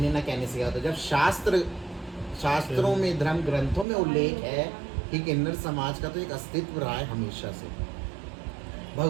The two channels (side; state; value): left; drops out; at 3.9 s